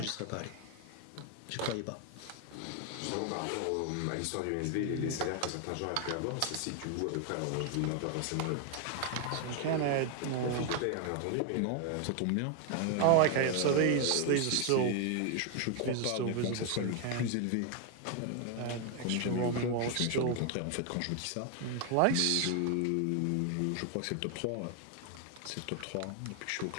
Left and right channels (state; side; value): different; both; correlation 0.01